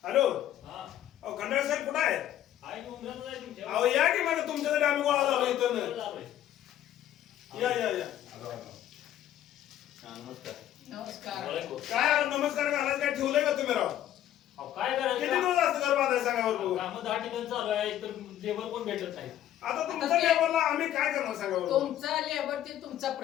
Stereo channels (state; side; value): quieter; right; 12.0 dB